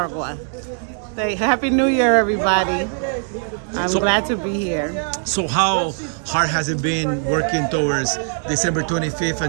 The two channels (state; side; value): silent; left; 57 dB below the other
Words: Happy New Year, everybody. I'm glad to be here. So how hard has it been working towards December 25th